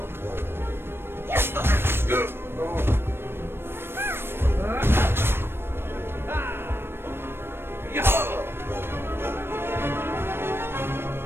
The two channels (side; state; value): left; late; 0.11 ms